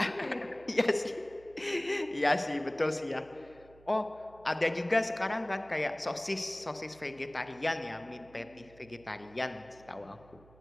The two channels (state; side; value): noise; right; hum, 24 dB below the sound